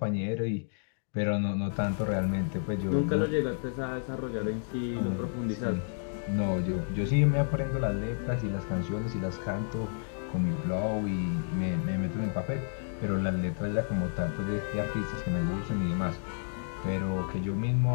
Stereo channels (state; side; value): silent; right; digital silence